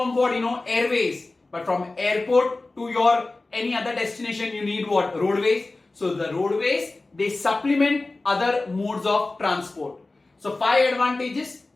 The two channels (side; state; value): right; quieter; 3.2 dB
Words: what? Airways. But from airport to your any other destination, you need what? Roadways. So the roadways, they supplement other modes of transport. So 5 advantages.